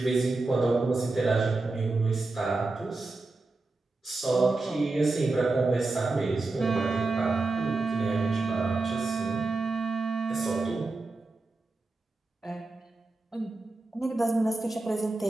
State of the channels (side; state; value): left; quieter; 3.4 dB